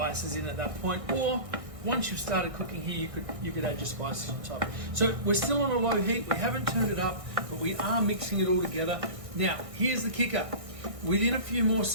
in at that point, or once you've started cooking here, you could add your spices on top. So we're still on a low heat. We haven't turned it up, but we are mixing it all together. Now, here's the kicker. Within a few more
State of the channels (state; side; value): late; left; 1.6 ms